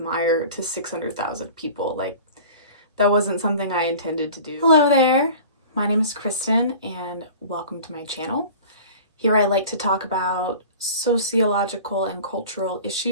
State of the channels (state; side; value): inverted; both; correlation -0.41